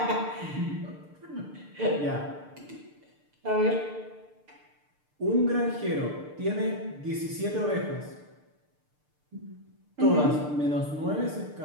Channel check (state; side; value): late; left; 6.7 ms